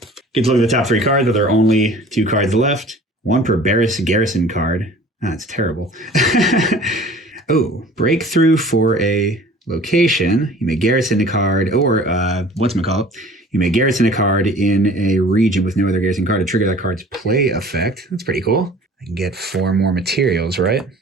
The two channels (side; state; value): both; normal; correlation 0.47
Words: Get to look at the top 3 cards, but there are only 2 cards left. 1 per garrison card. That's terrible. Oh, breakthrough for a location. You may garrison a card, or whatchamacallit, you may garrison a card in a region with no other garrison card to trigger that card's play effect. That's pretty cool. I can get 4 more materials, right?